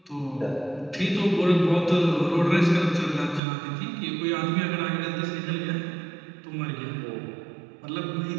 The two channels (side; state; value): left; drops out; at 3.4 s